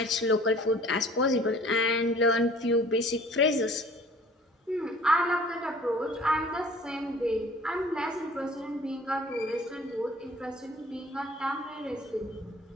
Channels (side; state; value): both; normal; correlation 0.50